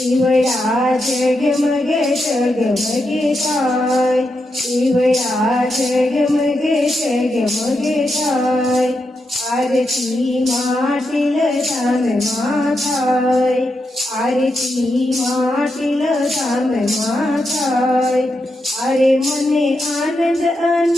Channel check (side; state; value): both; normal; correlation 0.85